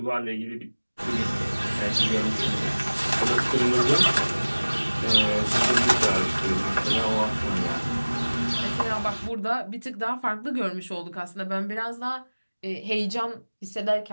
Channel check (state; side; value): inverted; both; correlation -1.00